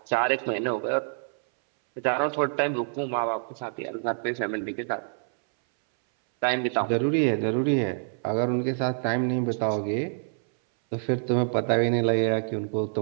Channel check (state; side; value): silent; left; 60 dB below the other